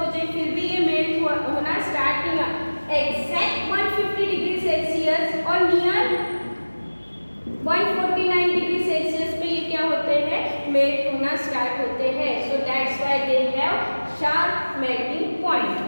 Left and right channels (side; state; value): both; inverted; correlation -1.00